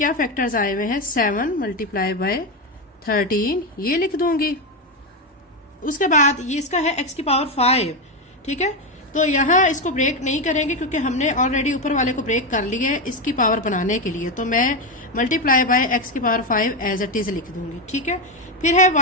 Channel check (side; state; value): both; normal; correlation 0.11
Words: फैक्टर्स आए हुए हैं, 7 मल्टीप्लाई बाय 13, ये लिख दूंगी। उसके बाद ये इसका है x की पावर 5। ठीक है, तो यहाँ इसको ब्रेक नहीं करेंगे क्योंकि हमने ऑलरेडी ऊपर वाले को ब्रेक कर लिया है इसकी पावर बनाने के लिए, तो मैं मल्टीप्लाई बाय x की पावर 5 एज इट इज लिख दूंगी। ठीक है, फिर है